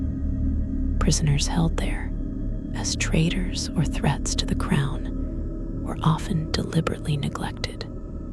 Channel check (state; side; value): identical; both; correlation 1.00